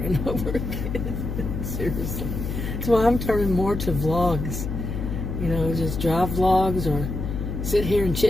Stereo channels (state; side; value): noise; left; hum, 4 dB below the sound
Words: over again. Seriously. That's why I'm turning more to vlogs, just drive vlogs or sit here and